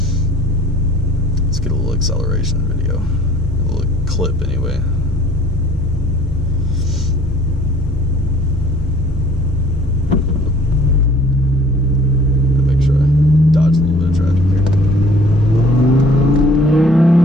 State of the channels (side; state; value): both; normal; correlation 0.54